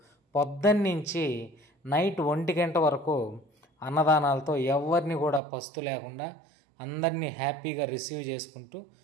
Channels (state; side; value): drops out; left; at 5.4 s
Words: పొద్దున్నుంచి నైట్ 1 గంట వరకు అన్నదానాలతో ఎవరిని కూడా పస్తు లేకుండా అందరినీ హ్యాపీగా రిసీవ్ చేసుకుంటూ